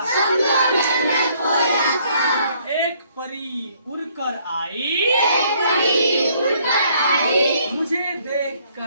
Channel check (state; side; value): inverted; both; correlation -0.64